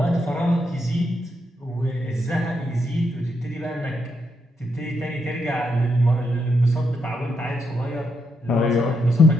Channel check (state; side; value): normal; both; correlation 0.80